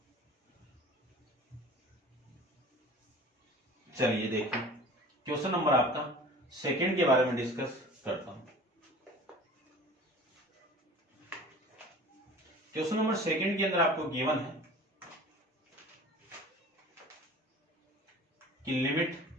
चलिए देखिए क्वेश्चन नंबर आपका सेकंड के बारे में डिस्कस करता हूं। क्वेश्चन नंबर सेकंड के अंदर आपको गिवन है कि limit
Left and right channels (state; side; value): normal; both; correlation 0.42